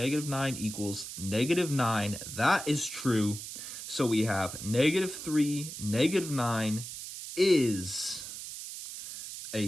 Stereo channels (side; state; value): right; noise; hiss, 9 dB below the sound